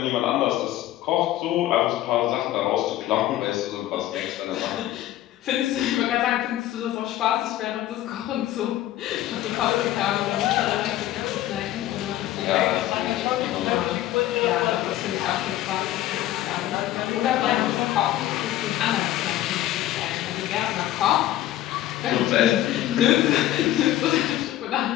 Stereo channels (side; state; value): right; quieter; 13.9 dB